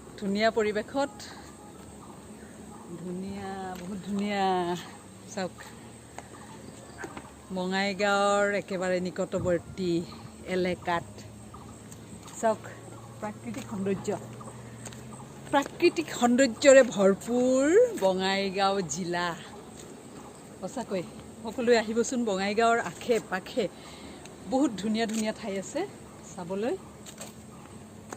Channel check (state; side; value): identical; both; correlation 1.00